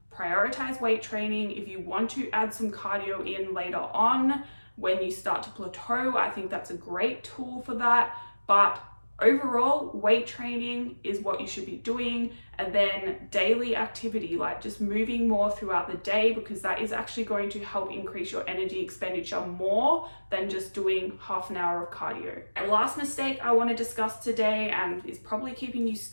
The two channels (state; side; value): inverted; both; correlation -1.00